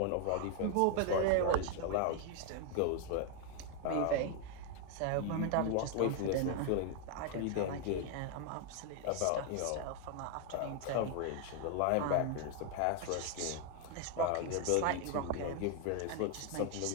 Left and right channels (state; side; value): different; both; correlation 0.01